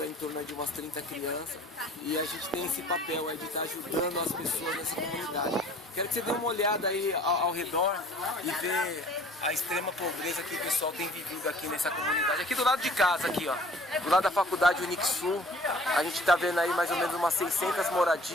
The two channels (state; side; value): normal; both; correlation 0.51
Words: aí em torno de umas 30 crianças e a gente tem esse papel aí de estar ajudando as pessoas nessa comunidade. Quero que você dê uma olhada aí ao redor e ver a extrema pobreza que o pessoal tem vivido aqui nessa comunidade. Aqui do lado de casa, aqui ó, do lado da faculdade Unixul, a gente está vendo aí mais ou menos umas 600